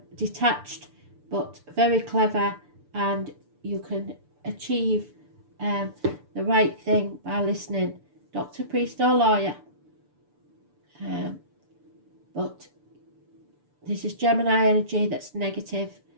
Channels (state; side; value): late; left; 6.9 ms